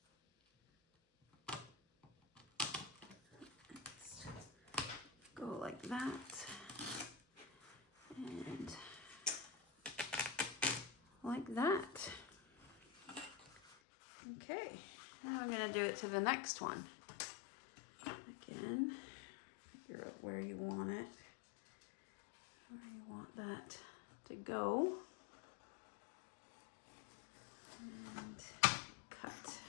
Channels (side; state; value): right; drops out; at 13.8 s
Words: that. And like that. Okay, now I'm gonna do it to the next one. Again, figure out where you want it, where you want that to go. And cut.